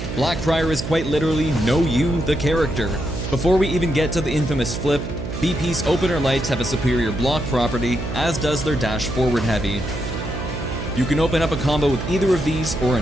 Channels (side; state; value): right; noise; hum, 6 dB below the sound